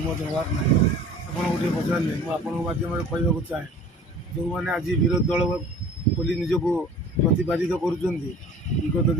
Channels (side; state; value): both; normal; correlation 0.46